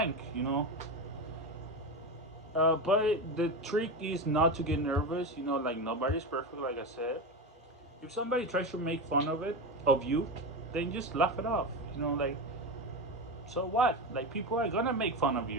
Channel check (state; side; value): normal; both; correlation 0.19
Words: You know, but the trick is not to get nervous. You know, like nobody's perfect. Like I said, if somebody tries to make fun of you, then just laugh it off. You know, like so what? Like people are gonna make fun of